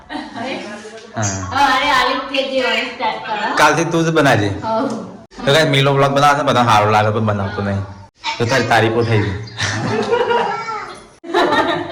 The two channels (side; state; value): both; identical; correlation 1.00